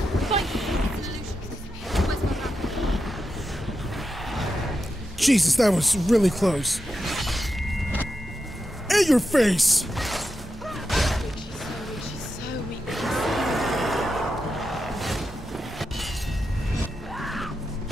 Jesus, that was really close. In your face! She's so weak.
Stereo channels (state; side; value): normal; both; correlation 0.88